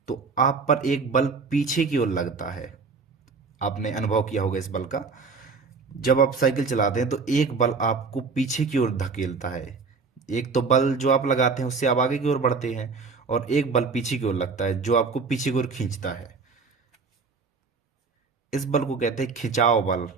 तो आप पर एक बल पीछे की ओर लगता है। आपने अनुभव किया होगा इस बल का। जब आप साइकिल चलाते हैं तो एक बल आपको पीछे की ओर धकेलता है। एक तो बल जो आप लगाते हैं उससे आप आगे की ओर बढ़ते हैं, और एक बल पीछे की ओर लगता है जो आपको पीछे की ओर खींचता है। इस बल को कहते हैं खिंचाव बल,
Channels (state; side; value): quieter; left; 4.7 dB